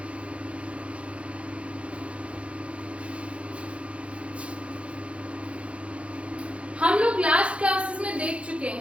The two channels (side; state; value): left; late; 0.061 ms